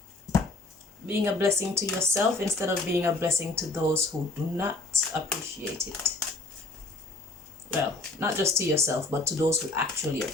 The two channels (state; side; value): quieter; right; 3.2 dB